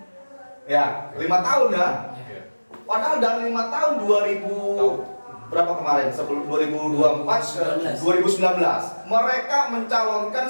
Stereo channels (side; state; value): both; inverted; correlation -1.00